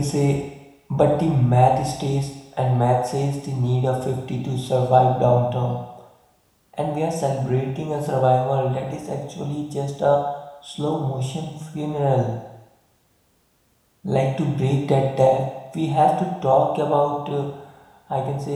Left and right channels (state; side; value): identical; both; correlation 1.00